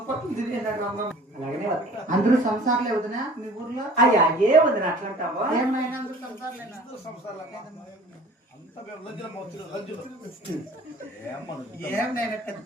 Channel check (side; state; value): both; normal; correlation 0.47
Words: అందరూ సంసారాలే వదినా మీ ఊర్లో? అయ్యా ఏ వదిన అట్లంటావా? ఏమైనా అందరూ సంసారాలేనా? సంసారాలు ఏం నేను